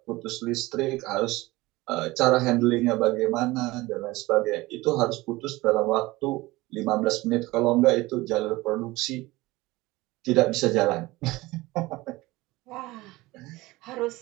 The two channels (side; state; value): left; quieter; 20.2 dB